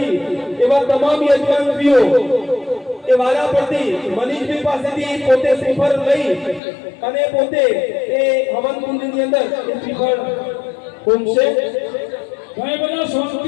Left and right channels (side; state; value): right; drops out; at 6.6 s